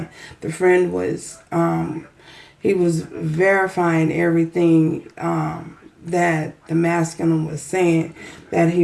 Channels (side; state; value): both; identical; correlation 1.00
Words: the friend was he was verifying everything that the masculine was saying that he